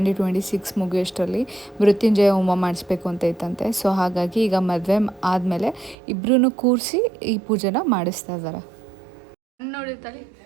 ಮುಗಿಯೋಷ್ಟರಲ್ಲಿ ಮೃತ್ಯುಂಜಯ ಹೋಮ ಮಾಡಿಸ್ಬೇಕು ಅಂತ ಇತ್ತಂತೆ. ಸೊ ಹಾಗಾಗಿ ಈಗ ಮದುವೆ ಆದಮೇಲೆ ಇಬ್ಬರೂ ಕೂರಿಸಿ ಈ ಪೂಜೆನ ಮಾಡಿಸ್ತಾ ಇದ್ದಾರೆ. ನೋಡಿರ್ತಾಳೆ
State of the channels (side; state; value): left; drops out; at 6.0 s